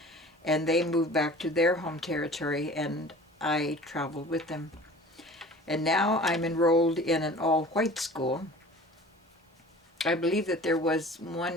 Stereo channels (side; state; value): both; normal; correlation 0.43